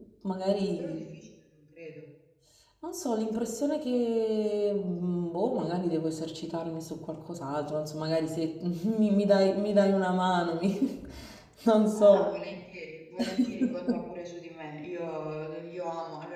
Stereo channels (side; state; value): both; identical; correlation 1.00